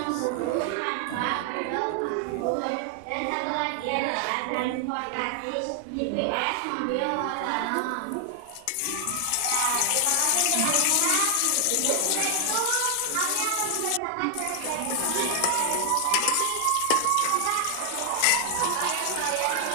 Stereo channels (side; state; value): both; different; correlation 0.00